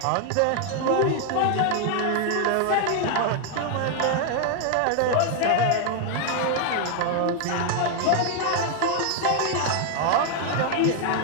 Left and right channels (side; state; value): both; different; correlation 0.00